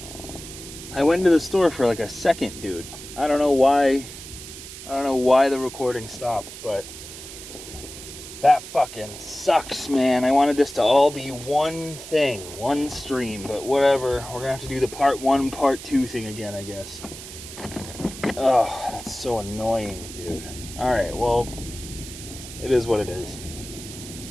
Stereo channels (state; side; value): noise; right; hiss, 13 dB below the sound